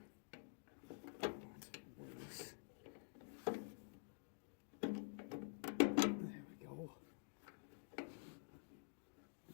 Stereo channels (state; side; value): silent; right; digital silence